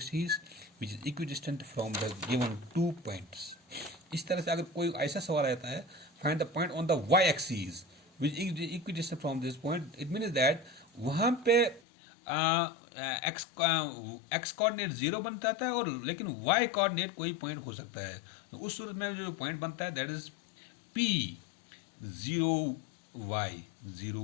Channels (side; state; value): right; drops out; at 11.8 s